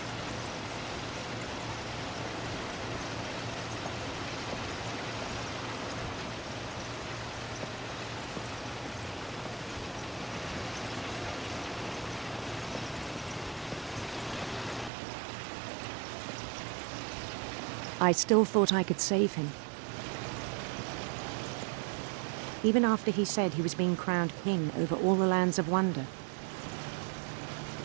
I still thought I could save him. Even after he said he was being crowned king over all the lands of wonder.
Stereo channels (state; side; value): drops out; left; at 14.9 s